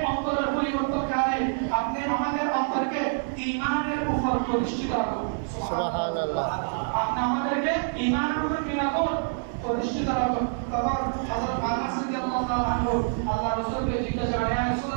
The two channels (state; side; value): silent; left; 60 dB below the other